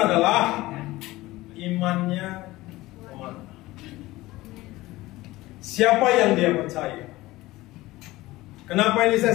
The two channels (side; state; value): right; quieter; 18.6 dB